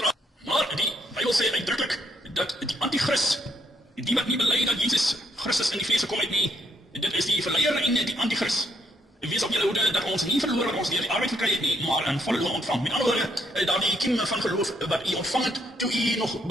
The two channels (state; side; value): normal; both; correlation 0.73